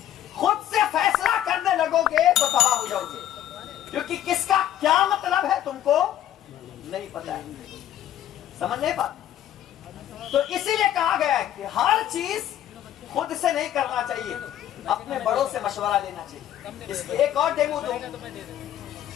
خود سے فیصلہ کرنے لگو گے تو تباہ ہو جاؤ گے، کیونکہ کس کا کیا مطلب ہے تم کو نہیں پتا ہے، سمجھ نہیں پاتے۔ تو اسی لیے کہا گیا ہے کہ ہر چیز خود سے نہیں کرنا چاہیے، اپنے بڑوں سے مشورہ لینا چاہیے۔ اس کے ایک اور ڈیمو دوں،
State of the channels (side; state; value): right; quieter; 11.8 dB